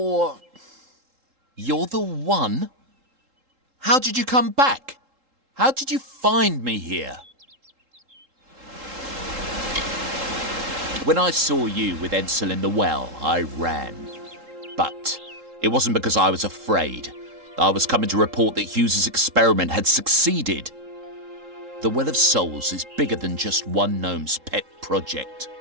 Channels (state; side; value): late; left; 3.7 ms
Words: the one? How did you come back? How did you find me here? When I saw you with Edsel in the well, I ran. But it wasn't because I was afraid. I was coming to report that Hughes's experiment had succeeded. The Well of Souls is bigger than just one gnome's pet project.